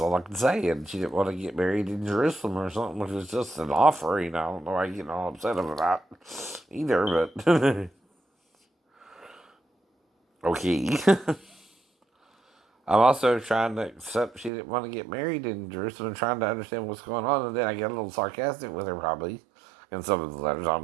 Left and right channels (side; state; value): left; drops out; at 14.5 s